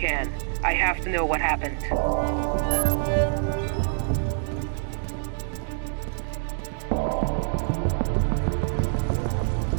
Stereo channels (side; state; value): left; silent; digital silence